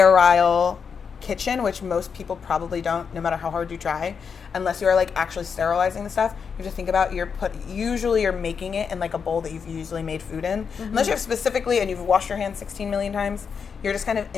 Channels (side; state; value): right; quieter; 6.3 dB